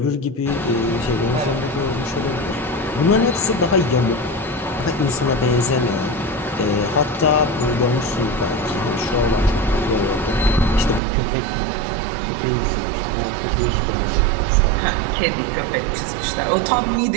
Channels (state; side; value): drops out; left; at 11.0 s